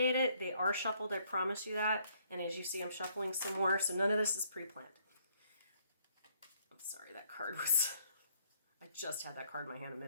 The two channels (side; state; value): both; inverted; correlation -0.66